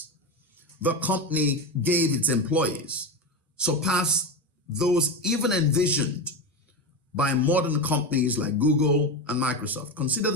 the company gave its employees surpassed those even envisioned by modern companies like Google and Microsoft. Consider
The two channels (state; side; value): normal; both; correlation 0.18